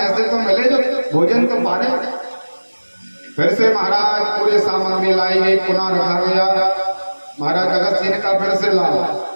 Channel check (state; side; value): inverted; both; correlation -1.00